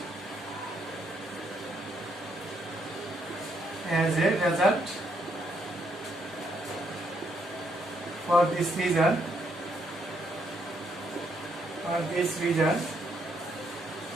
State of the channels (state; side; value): normal; both; correlation 0.74